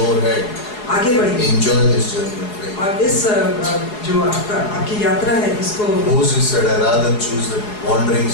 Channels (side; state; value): right; late; 4.8 ms